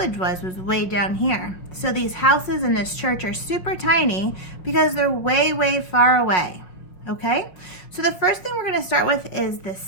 was way down here. So these houses and this church are super tiny because they're way, way far away. Okay, so the first thing we're going to start with is the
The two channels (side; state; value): right; late; 5.7 ms